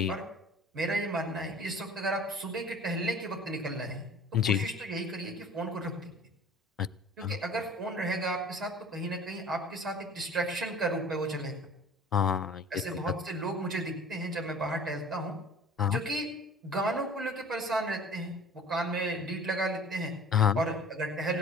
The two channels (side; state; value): both; normal; correlation 0.45